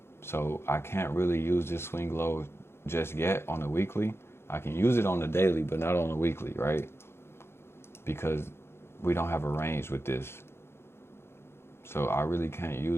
So I can't really use this swing low just yet on the weekly. I can use it on the daily, but not on the weekly, right? Because we don't have a range with this. So I really can't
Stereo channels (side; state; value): right; late; 0.12 ms